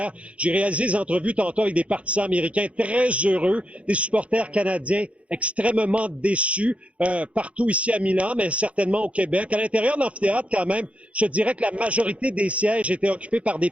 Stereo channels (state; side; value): late; left; 0.063 ms